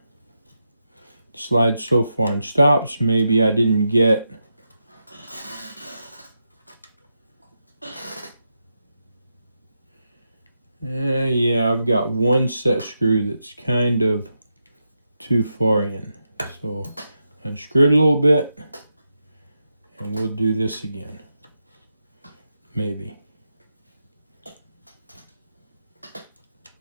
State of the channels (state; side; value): inverted; both; correlation -0.86